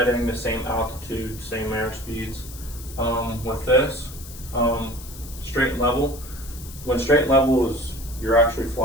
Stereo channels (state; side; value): noise; left; hiss, 16 dB below the sound